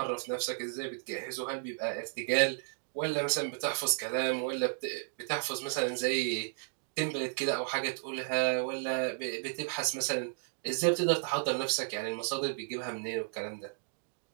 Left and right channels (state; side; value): silent; left; digital silence